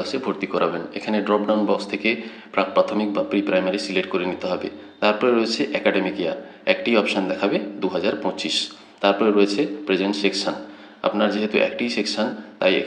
ভর্তি করাবেন। এখানে ড্রপডাউন বক্স থেকে প্রাক প্রাথমিক বা প্রি প্রাইমারি সিলেক্ট করে নিতে হবে। তারপরে রয়েছে একাডেমিক ইয়ার, একটি অপশান দেখাবে 2025। তারপরে রয়েছে প্রেজেন্ট সেকশন, আপনার যেহেতু একটি সেকশন তাই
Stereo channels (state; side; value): identical; both; correlation 1.00